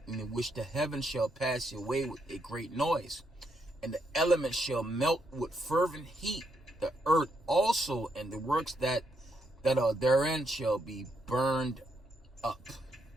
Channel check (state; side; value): normal; both; correlation 0.77